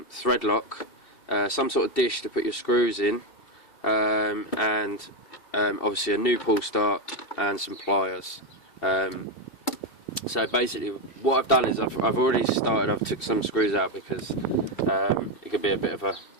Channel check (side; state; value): right; late; 2.7 ms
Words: thread lock, some sort of dish to put your screws in, and obviously a new pull start and some pliers. So basically what I've done is I've took some screws out because it can be a bit of a